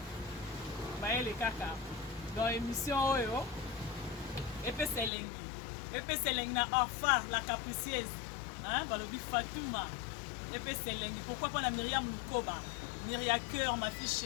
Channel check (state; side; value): drops out; right; at 5.1 s